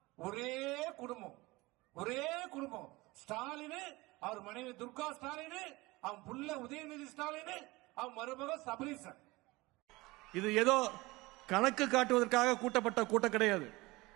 ஒரே குடும்பம், ஒரே குடும்பம். ஸ்டாலின், அவர் மனைவி துர்கா ஸ்டாலின், அவன் புள்ள உதயநிதி ஸ்டாலின், அவன் மருமக சபரீசன். இது ஏதோ கணக்கு காட்டுவதற்காக கூட்டப்பட்ட கூட்டம் கிடையாது.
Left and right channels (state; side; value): quieter; left; 21.7 dB